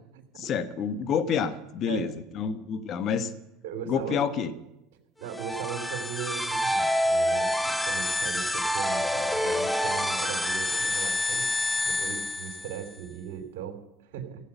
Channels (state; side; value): normal; both; correlation 0.76